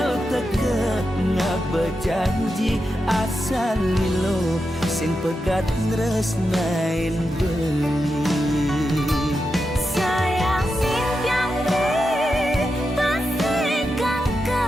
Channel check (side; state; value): both; normal; correlation 0.88